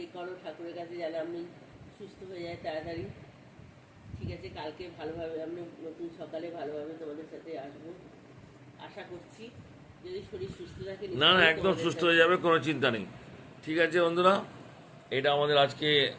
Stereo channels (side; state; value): both; identical; correlation 1.00